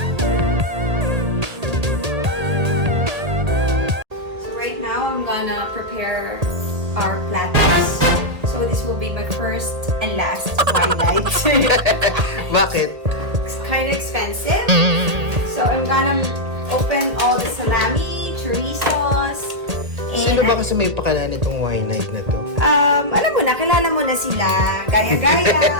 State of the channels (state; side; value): late; left; 1.8 ms